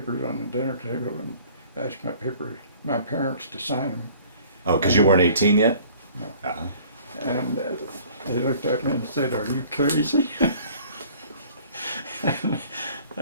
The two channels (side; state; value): both; inverted; correlation -0.52